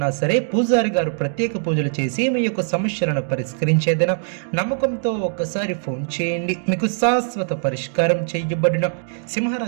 సరే పూజారి గారు ప్రత్యేక పూజలు చేసి మీ యొక్క సమస్యలను పరిష్కరించేదన నమ్మకంతో ఒక్కసారి ఫోన్ చేయండి. మీకు శాశ్వత పరిష్కారం చేయబడిన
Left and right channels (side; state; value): left; silent; digital silence